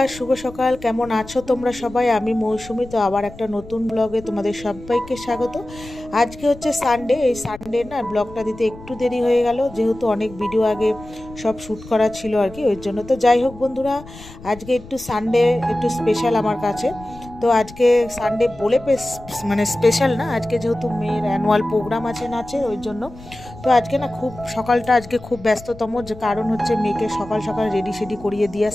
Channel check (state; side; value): noise; left; rumble, 17 dB below the sound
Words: শুভ সকাল। কেমন আছো তোমরা সবাই? আমি মৌসুমি। তো আবার একটা নতুন ব্লগে তোমাদের সবাইকে স্বাগত। আজকে হচ্ছে সানডে। এই সানডে না ব্লগটা দিতে একটু দেরি হয়ে গেল, যেহেতু অনেক ভিডিও আগে সব শ্যুট করা ছিল আর কি, ওই জন্য। তো যাই হোক বন্ধুরা, আজকে একটু সানডে একটু স্পেশাল আমার কাছে। তো আজকে সানডে বলে মানে স্পেশাল না, আজকে যেহেতু মেয়ের অ্যানুয়াল প্রোগ্রাম আছে নাচের, ওই জন্য। তো আজকে না খুব সকালটা আজকে খুব ব্যস্ততম, যে কারণ হচ্ছে মেয়েকে সকাল সকাল রেডি সেডি করিয়ে দিয়ে